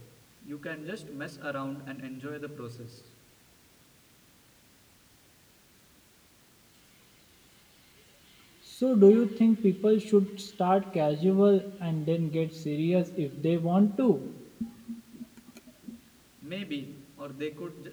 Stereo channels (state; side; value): identical; both; correlation 1.00